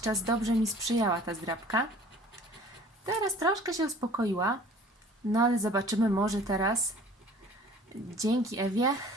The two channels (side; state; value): both; normal; correlation 0.48